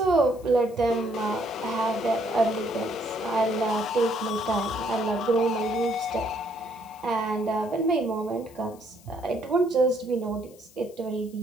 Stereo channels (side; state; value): left; noise; hiss, 25 dB below the sound